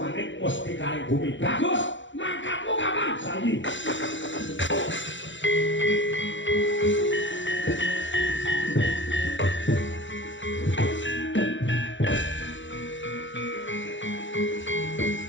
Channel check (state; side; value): late; right; 0.55 ms